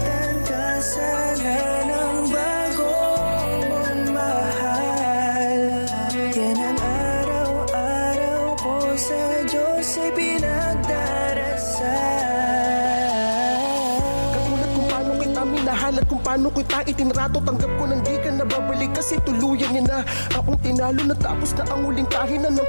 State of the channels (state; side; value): inverted; both; correlation -1.00